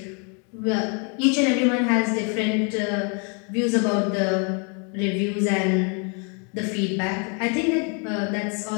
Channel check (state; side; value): quieter; right; 36.6 dB